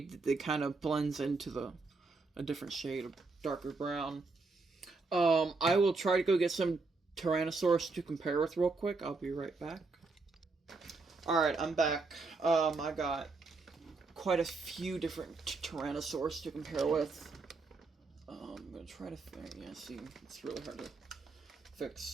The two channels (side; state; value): left; quieter; 3.9 dB